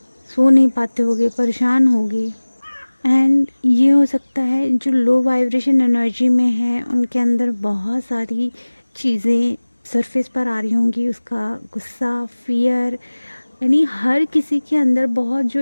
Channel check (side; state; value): both; inverted; correlation -1.00